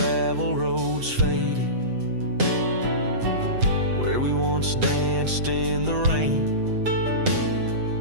roads faded where we once danced in the rain.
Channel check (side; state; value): left; late; 7.9 ms